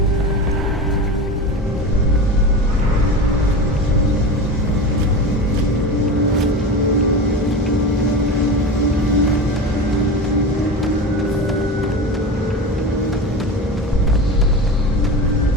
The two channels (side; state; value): both; normal; correlation 0.27